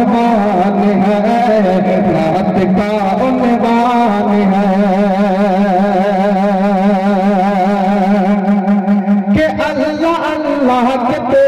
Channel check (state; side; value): identical; both; correlation 1.00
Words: है, नात का उन्वान है कि अल्लाह अल्लाह